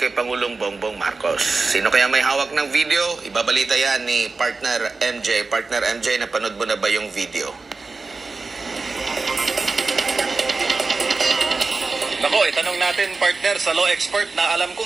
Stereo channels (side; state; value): left; quieter; 4.0 dB